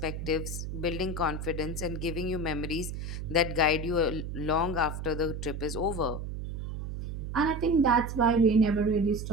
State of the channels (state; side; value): noise; right; hum, 6 dB below the sound